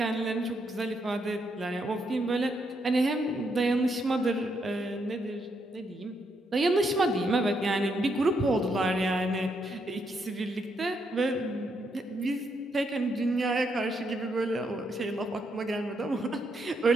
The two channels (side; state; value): both; normal; correlation 0.78